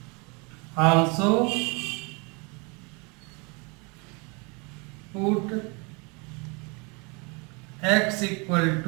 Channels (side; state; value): left; quieter; 30.9 dB